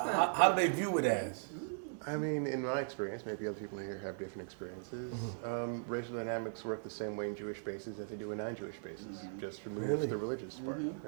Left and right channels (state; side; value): silent; left; 52 dB below the other